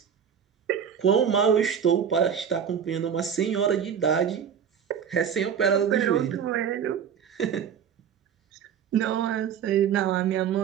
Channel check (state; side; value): quieter; left; 7.9 dB